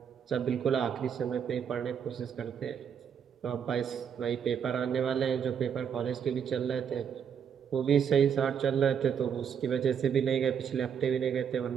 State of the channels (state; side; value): quieter; left; 7.7 dB